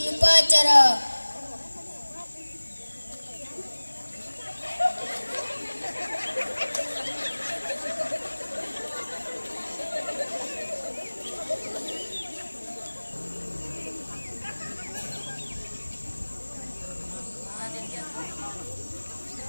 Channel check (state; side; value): inverted; both; correlation -1.00